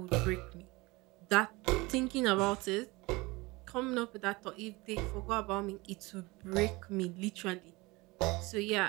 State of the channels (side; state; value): left; quieter; 23.3 dB